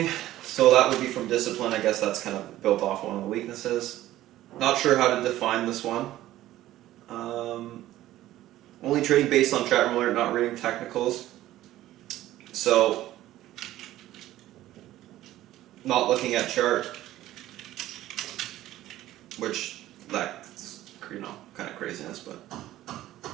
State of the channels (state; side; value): quieter; left; 14.6 dB